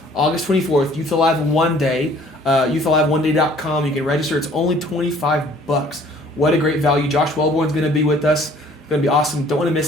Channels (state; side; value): normal; both; correlation 0.55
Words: August 24th, Youth Alive One Day, youthaliveeneday.com. You can register. It's only $25. What a great value. Josh Wellborn's going to be with us. It's going to be awesome. Don't want to